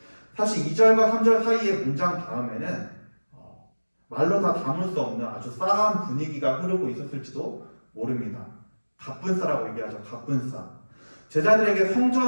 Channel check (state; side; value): inverted; both; correlation -1.00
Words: 사실 2절과 3절 사이의 문장 다음에는 말로 다 담을 수 없는 아주 싸한 분위기가 흐르고 있었을지도 모릅니다. 갑분싸라고 얘기하죠. 갑분싸. 제자들에게